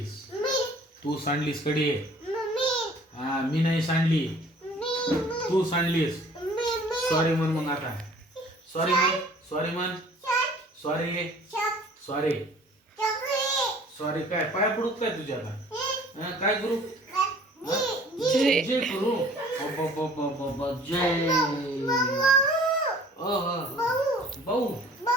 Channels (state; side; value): normal; both; correlation 0.51